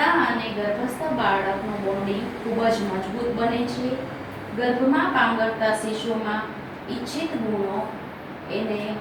અને ગર્ભસ્થ બાળકનું બોન્ડિંગ ખૂબ જ મજબૂત બને છે. ગર્ભમાં પાંગરતા શિશુમાં ઈચ્છિત ગુણો એને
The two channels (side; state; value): both; identical; correlation 1.00